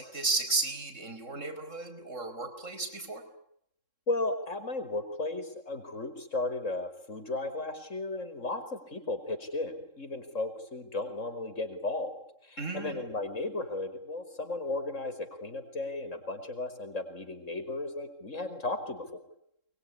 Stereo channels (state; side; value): late; right; 3.7 ms